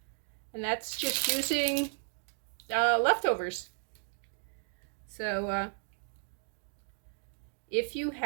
And that's just using leftovers. So if you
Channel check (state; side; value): silent; left; 55 dB below the other